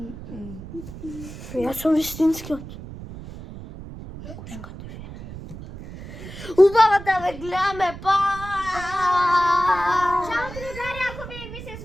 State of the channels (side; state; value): right; noise; rumble, 13 dB below the sound